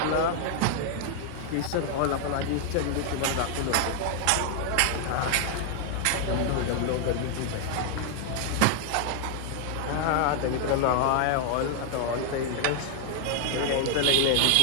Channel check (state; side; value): different; both; correlation 0.00